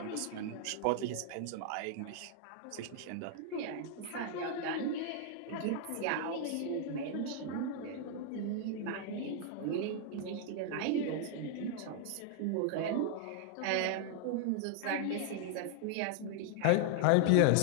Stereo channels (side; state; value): both; different; correlation 0.00